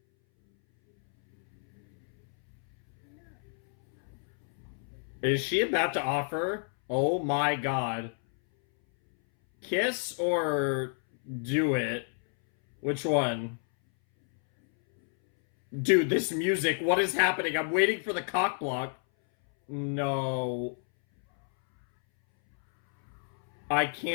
Is she about to offer? Oh my god. Kiss or do it? Which one? Dude, this music, what is happening? I'm waiting for the cock block. No. I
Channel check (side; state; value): right; silent; 58 dB below the other